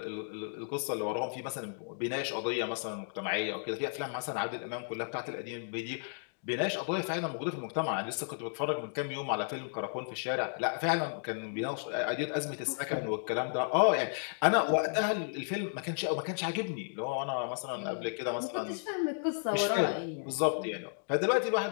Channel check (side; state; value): right; silent; digital silence